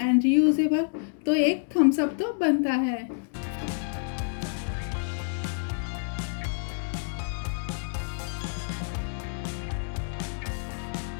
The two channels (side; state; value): right; silent; digital silence